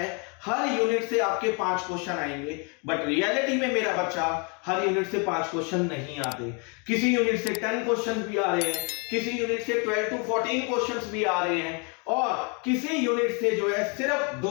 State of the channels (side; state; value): right; quieter; 34.5 dB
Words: हर यूनिट से आपके 5 क्वेश्चन आएंगे, बट रियलिटी में मेरा बच्चा हर यूनिट से 5 क्वेश्चन नहीं आते। किसी यूनिट से 10 क्वेश्चन भी आ रहे हैं, किसी यूनिट से 12 to 14 क्वेश्चंस भी आ रहे हैं और किसी यूनिट से जो है सिर्फ